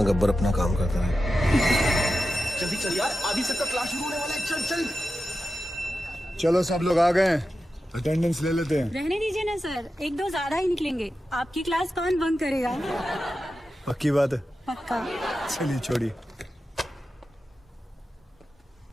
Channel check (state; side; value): normal; both; correlation 0.91